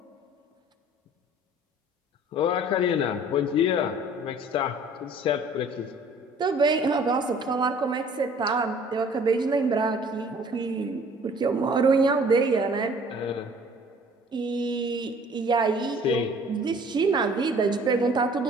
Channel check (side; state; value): both; normal; correlation 0.52